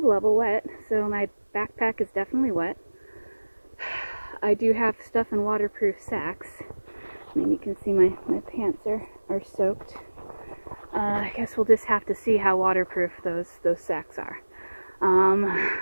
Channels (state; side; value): inverted; both; correlation -1.00